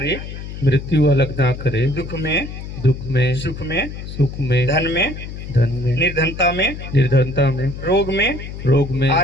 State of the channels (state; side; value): noise; left; hum, 9 dB below the sound